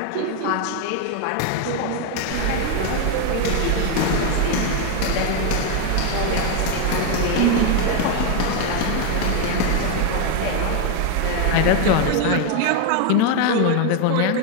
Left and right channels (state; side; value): different; both; correlation 0.01